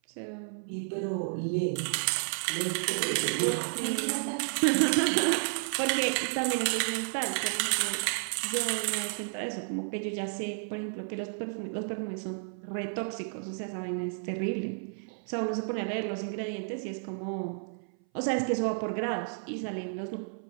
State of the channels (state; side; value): silent; left; 57 dB below the other